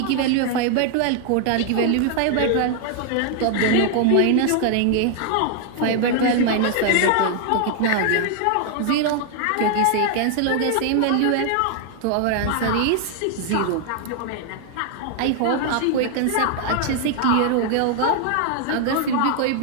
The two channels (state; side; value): different; both; correlation 0.00